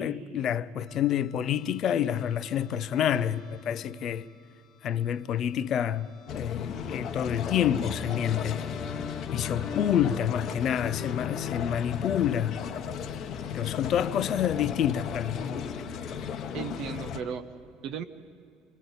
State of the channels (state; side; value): quieter; right; 8.5 dB